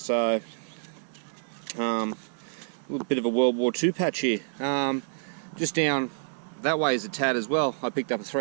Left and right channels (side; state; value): left; silent; digital silence